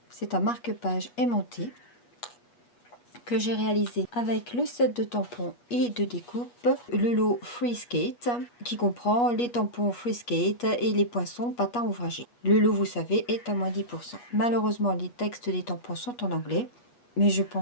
C'est un marque-page aimanté que j'ai réalisé avec le set de tampons et de découpe, le lot Free Skate, qui comprend les tampons Free Skate et les poinçons patins ouvragés. Le lot, vous savez, est à moins 10%. Malheureusement, les textes des tampons sont en anglais, mais je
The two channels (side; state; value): right; late; 8.3 ms